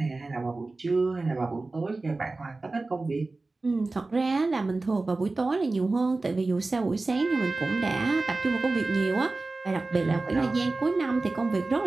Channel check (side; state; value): left; quieter; 3.4 dB